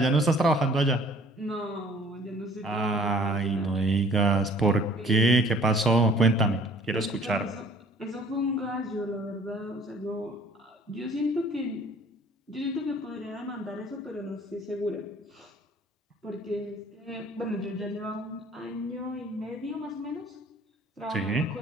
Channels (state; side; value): normal; both; correlation 0.54